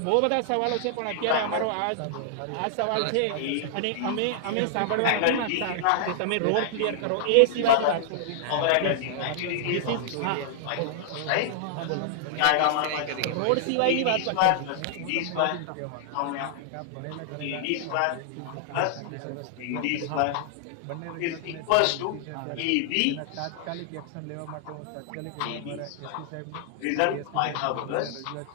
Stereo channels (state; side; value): different; both; correlation -0.01